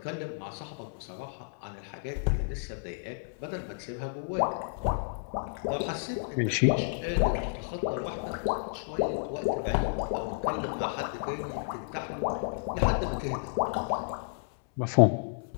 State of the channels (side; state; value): right; silent; 57 dB below the other